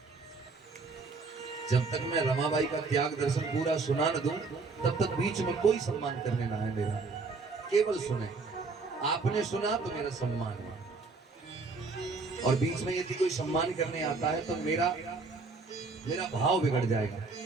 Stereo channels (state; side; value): quieter; left; 4.1 dB